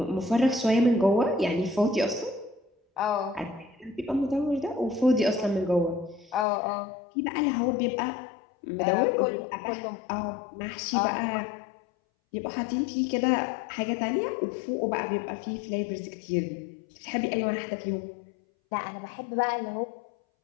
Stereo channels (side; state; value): right; drops out; at 6.5 s